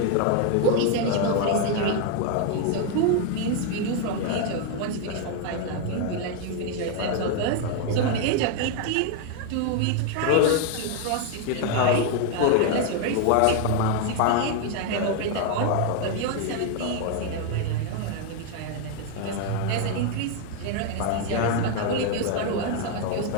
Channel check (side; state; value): both; different; correlation 0.01